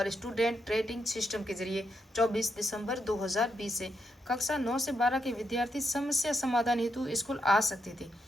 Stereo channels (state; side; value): normal; both; correlation 0.80